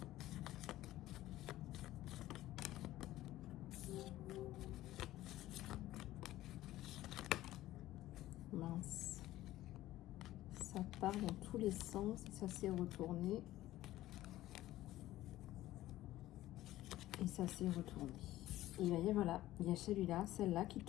Mince. Ça part dans tous les sens et ça s'est retourné. Et ça s'est retourné. Et voyez, voilà, il y a celui-là, celle-là qui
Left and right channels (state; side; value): quieter; right; 15.2 dB